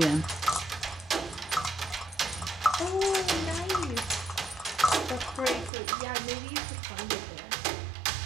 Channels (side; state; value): left; drops out; at 5.7 s